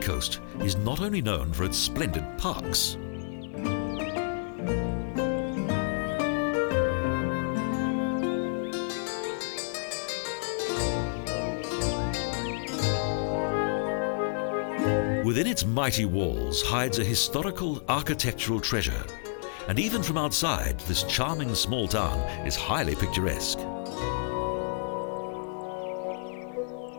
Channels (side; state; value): right; silent; digital silence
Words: is not only known for its splendid parks. Within its mighty walls hides a historical architectural treasure, and even from outside, this charming small town is highly picturesque.